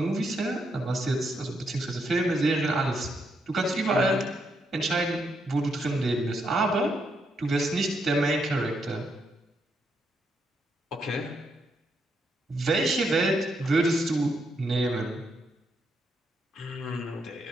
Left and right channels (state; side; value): normal; both; correlation 0.79